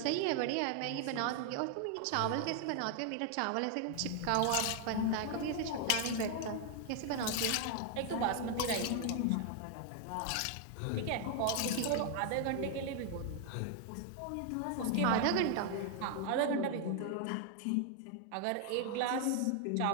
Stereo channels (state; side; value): different; both; correlation 0.00